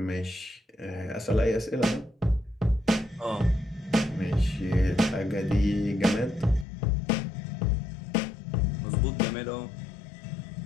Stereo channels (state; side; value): drops out; right; at 6.7 s